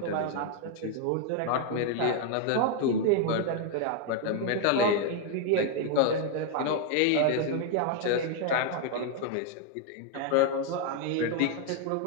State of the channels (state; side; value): different; both; correlation 0.00